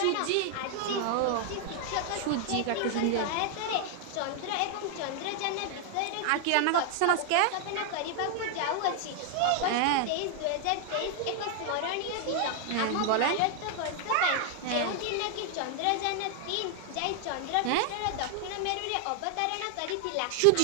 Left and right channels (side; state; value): both; different; correlation 0.00